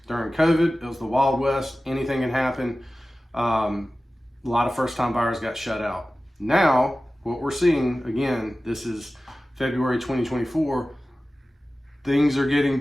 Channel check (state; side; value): normal; both; correlation 0.96